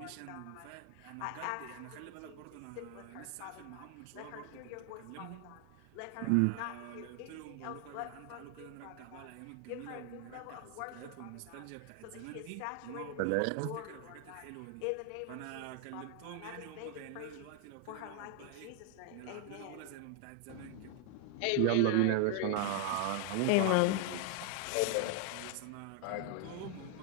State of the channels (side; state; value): both; different; correlation 0.01